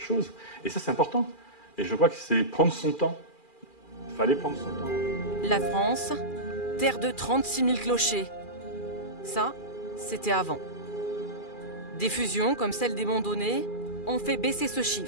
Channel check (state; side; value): late; right; 2.4 ms